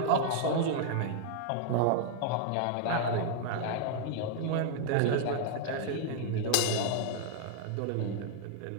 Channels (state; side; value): different; both; correlation -0.01